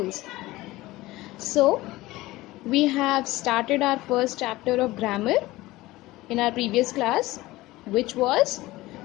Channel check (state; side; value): quieter; right; 18.6 dB